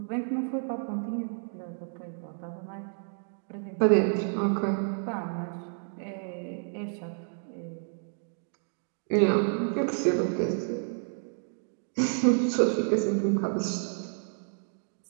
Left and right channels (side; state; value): left; silent; 58 dB below the other